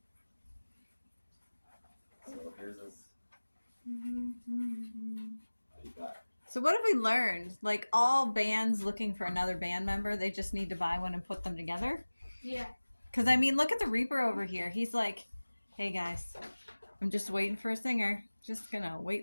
So here's his. What do you got? So what have we learned? Like all bands looking for another band member, they just need to buy one and put them together? Yeah. Because, I mean, look at the Reaper over here. He's like, hey, guys, I'm just waiting for a singer. Just going to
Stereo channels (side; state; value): both; inverted; correlation -1.00